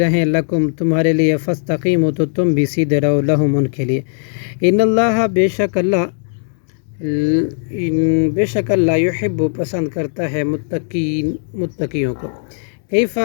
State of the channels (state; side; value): silent; right; digital silence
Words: لکم تمہارے لیے فاستقیموا تو تم بھی سیدھے رہو لہم ان کے لیے ان اللہ بے شک اللہ یحب پسند کرتا ہے متقیوں کو